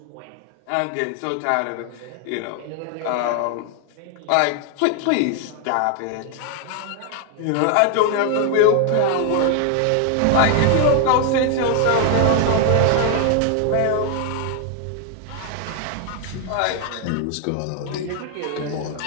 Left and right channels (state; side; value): different; both; correlation 0.00